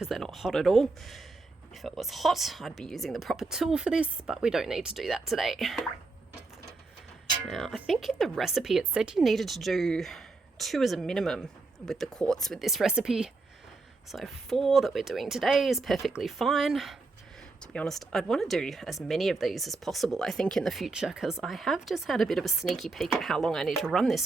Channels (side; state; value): left; quieter; 3.6 dB